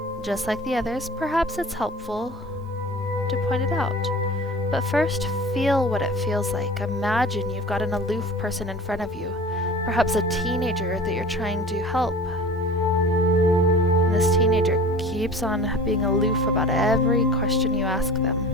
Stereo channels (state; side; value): normal; both; correlation 0.40